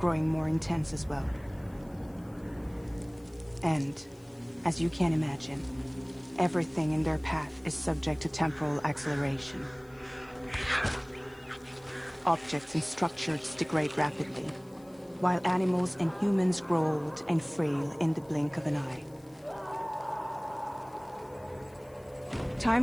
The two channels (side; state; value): left; noise; hiss, 28 dB below the sound